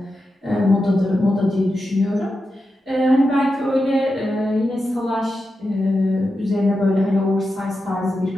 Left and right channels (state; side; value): normal; both; correlation 0.89